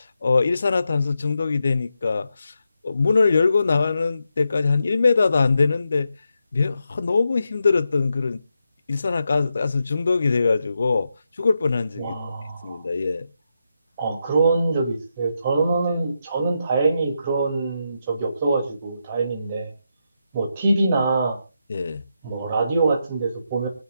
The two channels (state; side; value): inverted; both; correlation -0.85